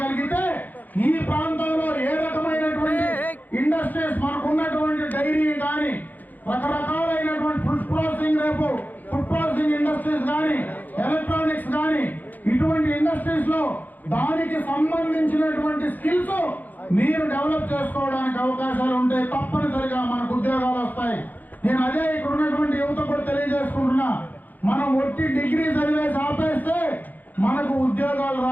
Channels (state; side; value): late; right; 0.083 ms